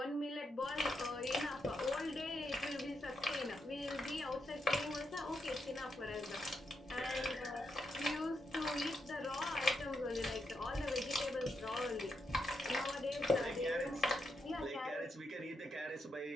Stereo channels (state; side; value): normal; both; correlation 0.82